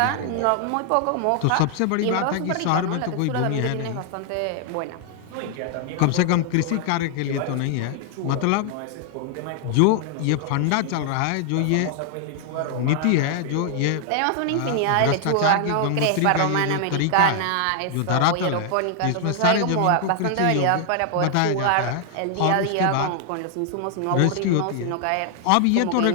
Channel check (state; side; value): different; both; correlation 0.00